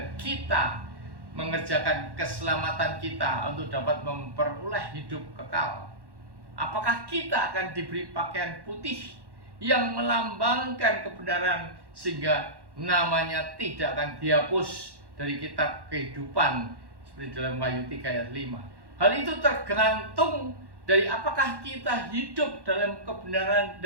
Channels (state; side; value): late; left; 1.1 ms